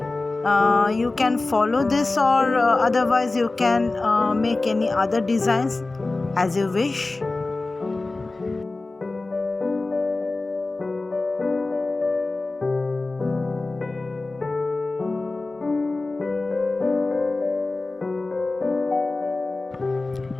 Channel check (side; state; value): right; quieter; 3.3 dB